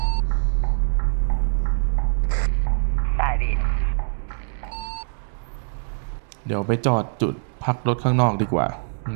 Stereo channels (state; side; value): silent; left; 63 dB below the other